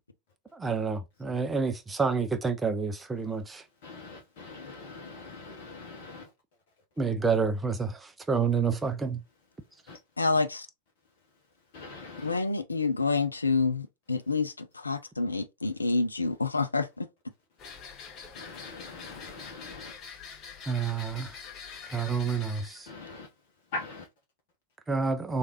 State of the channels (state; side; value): normal; both; correlation -0.05